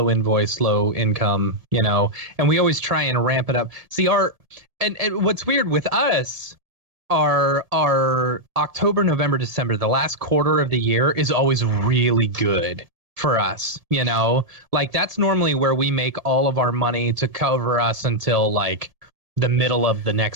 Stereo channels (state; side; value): late; left; 1.7 ms